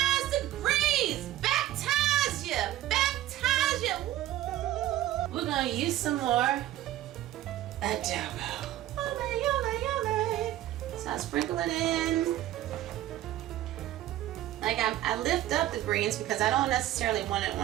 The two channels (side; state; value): left; quieter; 13.9 dB